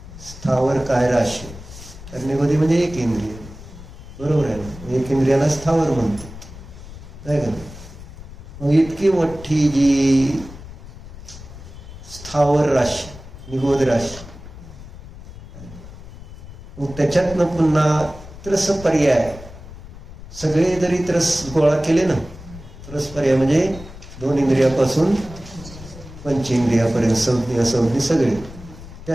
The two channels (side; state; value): left; noise; rumble, 15 dB below the sound